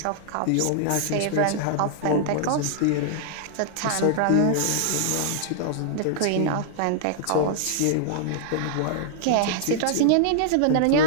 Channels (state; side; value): different; both; correlation -0.01